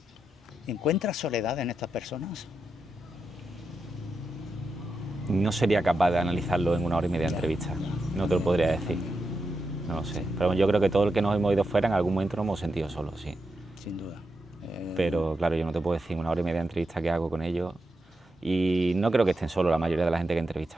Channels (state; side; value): normal; both; correlation 0.87